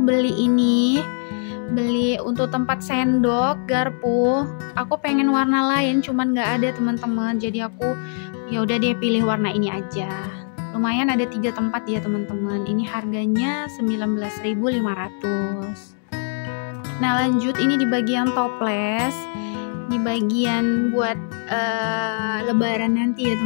beli untuk tempat sendok, garpu. Aku pengen warna lain cuman nggak ada teman-teman, jadi aku ya udah deh pilih warna ini aja. Lumayan ada 3 tempat ya teman-teman. Ini harganya 19.500. Nah lanjut ini di bagian toples, di bagian buat lebaran nanti ya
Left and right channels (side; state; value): right; silent; 64 dB below the other